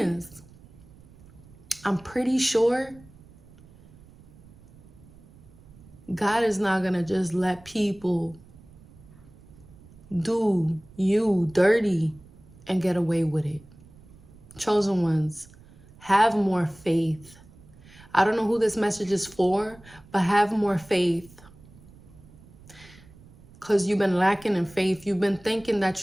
I'm pretty sure God is not gonna just let people do you dirty and get away with it. Chosen ones, have more faith. I don't know who this message is for, but have more faith. Because you've been lacking in faith. You've been thinking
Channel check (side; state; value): right; noise; rumble, 23 dB below the sound